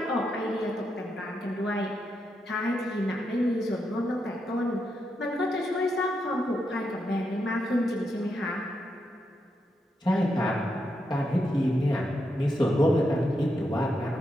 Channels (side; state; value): both; normal; correlation 0.83